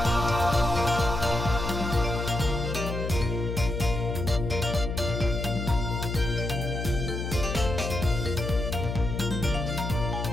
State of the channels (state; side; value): noise; left; hum, 3 dB below the sound